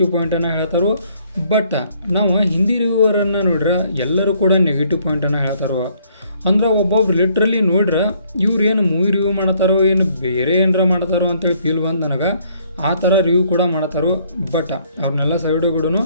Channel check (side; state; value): both; inverted; correlation -0.65